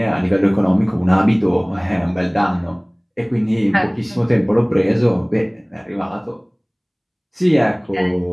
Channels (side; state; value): both; identical; correlation 1.00